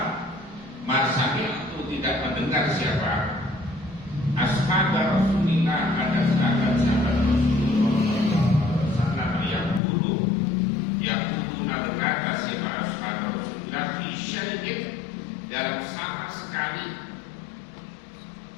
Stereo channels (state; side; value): drops out; right; at 9.8 s